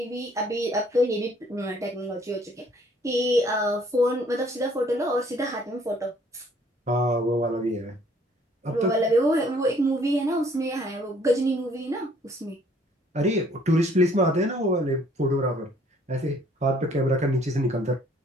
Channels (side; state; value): both; normal; correlation 0.61